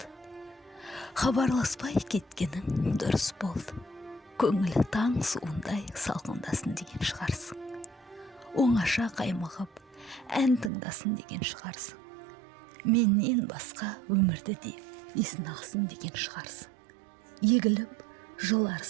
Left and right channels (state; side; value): drops out; left; at 10.7 s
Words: Хабарласпай кеткенің дұрыс болды. Көңілі таң суындай салқындасын деген шығарсың. Оңаша қаймығып, ән тыңдасын деген шығарсың. Менен басқа өмірді де есін ақсын деген шығарсың. Егіліп,